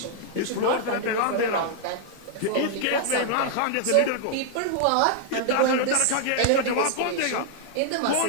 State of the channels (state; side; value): different; both; correlation -0.01